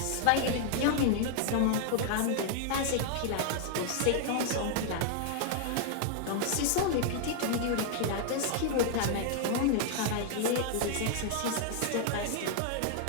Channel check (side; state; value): both; different; correlation 0.00